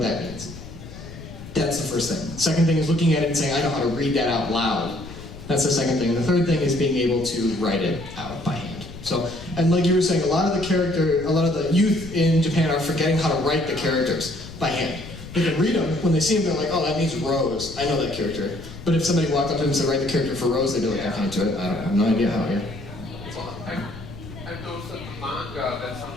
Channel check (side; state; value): left; noise; rumble, 14 dB below the sound